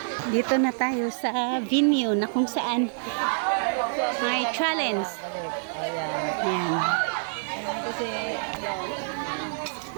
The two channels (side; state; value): left; silent; 60 dB below the other